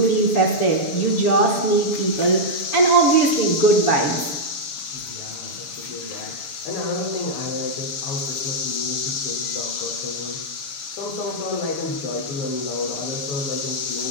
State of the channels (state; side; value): late; right; 7.0 ms